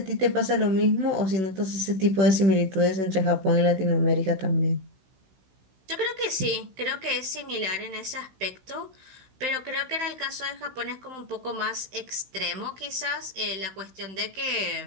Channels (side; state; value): left; late; 16 ms